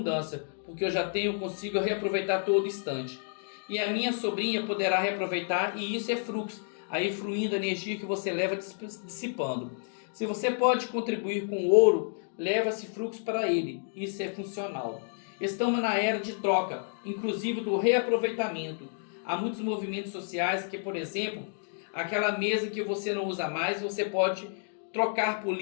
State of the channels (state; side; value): silent; right; digital silence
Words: porque eu já consigo reaproveitar todo instante. E a minha sobrinha poderá reaproveitar, e isso é fluxo. Aí fluindo a energia que você leva dissipando. Se você pode contribuir com ouro, leva esse fluxo para ele. Isso é funcional. Estamos na era de troca, inclusive do reaproveitamento. Há muitos movimentos sociais que, por exemplo, aquela mesa que você não usa mais, você pode trocar por